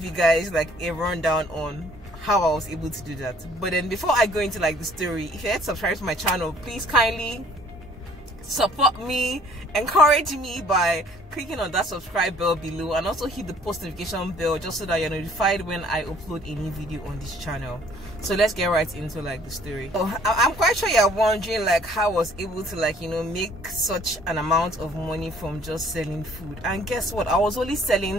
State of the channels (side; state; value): both; normal; correlation 0.57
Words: you guys a rundown on how I was able to do that. But then before I go into the story, if you're yet subscribed to my channel, please kindly support me, encourage me by clicking on that subscribe bell below, and also hit the post notification bell just so that you're notified when I upload a new video on this channel. So let's get right into the story. So I'm quite sure you're wondering how I was able to make such an amount of money from just selling food. And guess what? I was only